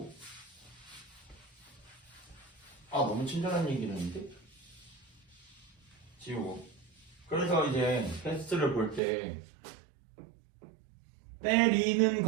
너무 친절한 얘기를 했는데? 지우고. 그래서 이제 테스트를 볼 때 때리는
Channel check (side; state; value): left; drops out; at 9.0 s